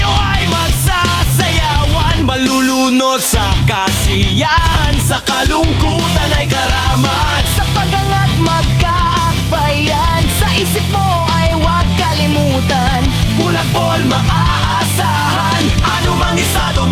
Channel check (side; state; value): both; identical; correlation 1.00